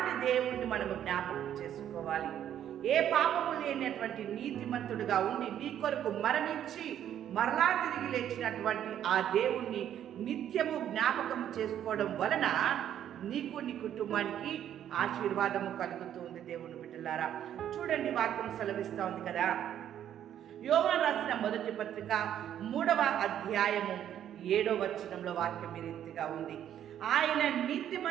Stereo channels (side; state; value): left; quieter; 10.4 dB